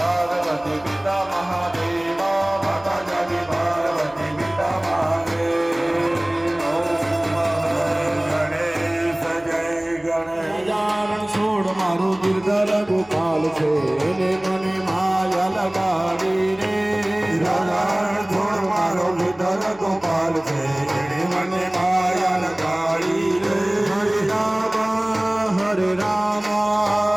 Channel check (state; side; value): noise; left; hum, 27 dB below the sound